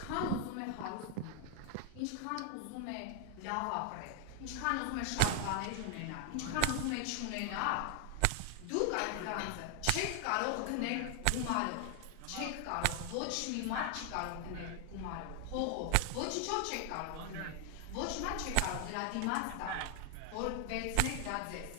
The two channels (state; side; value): different; both; correlation 0.00